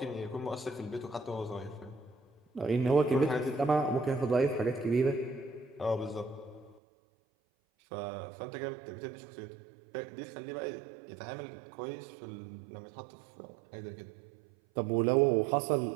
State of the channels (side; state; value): left; drops out; at 6.8 s